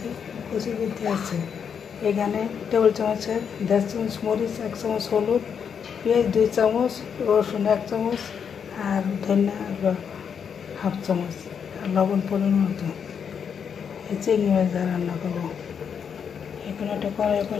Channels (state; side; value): quieter; right; 7.2 dB